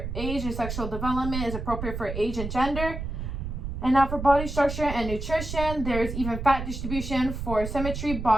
age and sexual development is appropriate for age and gender. And now for body structure and nutrition, there's even fat distribution. For symmetry,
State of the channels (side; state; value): right; noise; rumble, 5 dB below the sound